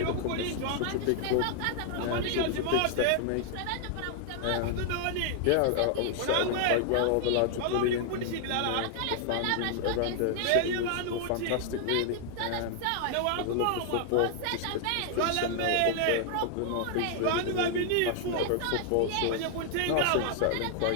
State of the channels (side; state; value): both; different; correlation 0.00